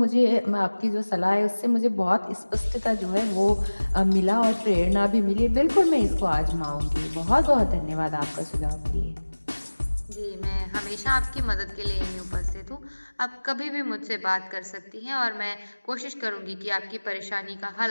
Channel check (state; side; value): inverted; both; correlation -1.00